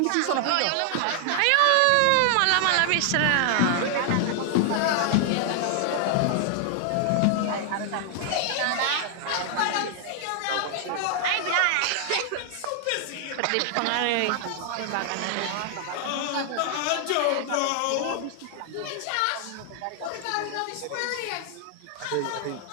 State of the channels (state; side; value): different; both; correlation 0.00